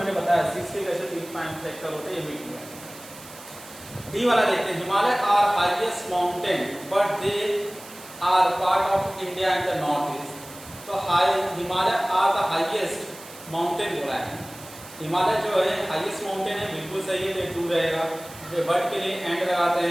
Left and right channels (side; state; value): right; noise; hiss, 17 dB below the sound